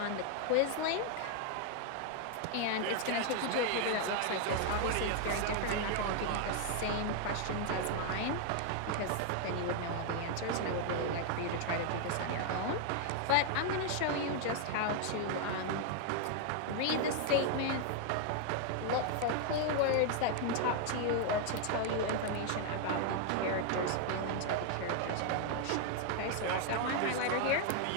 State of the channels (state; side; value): different; both; correlation 0.00